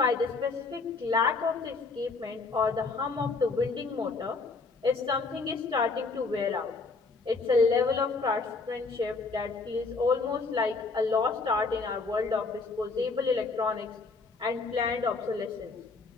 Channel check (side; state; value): right; quieter; 4.0 dB